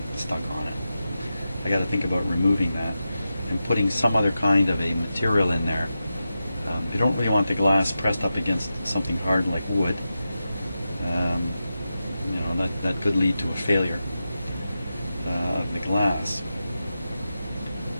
stuck on it. I got to think about removing that and putting some other kind of a material in there. You don't really want the glass pressed up against something hard like wood. You know, that could lead to a failure of the glass.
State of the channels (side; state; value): both; inverted; correlation -0.90